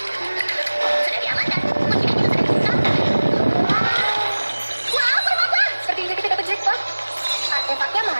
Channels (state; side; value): inverted; both; correlation -1.00